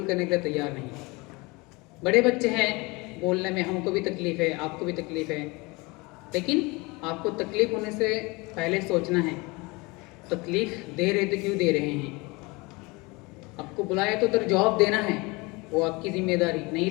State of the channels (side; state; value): right; quieter; 25.3 dB